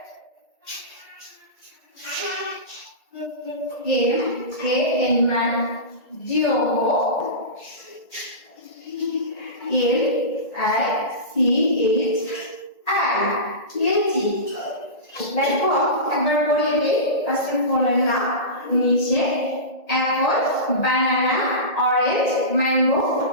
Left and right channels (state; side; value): late; right; 1.8 ms